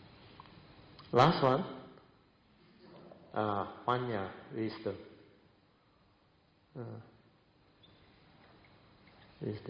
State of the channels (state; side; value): identical; both; correlation 1.00